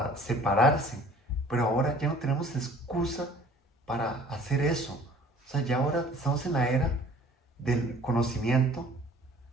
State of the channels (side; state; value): both; normal; correlation 0.51